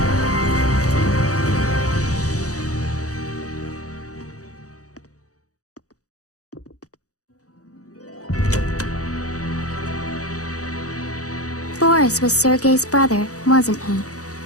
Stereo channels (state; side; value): late; right; 0.66 ms